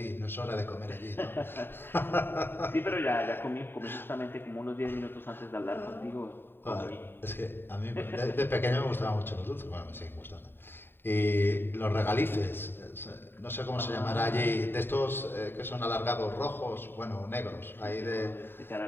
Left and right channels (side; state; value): right; late; 0.10 ms